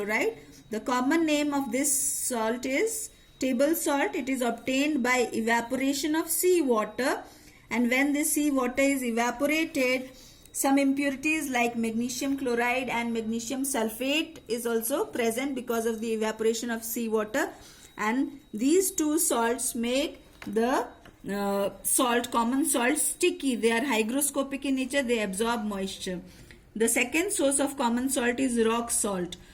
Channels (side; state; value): both; identical; correlation 1.00